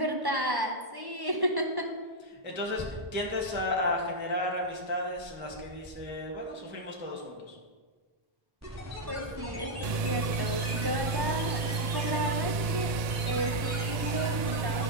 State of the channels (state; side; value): late; left; 1.7 ms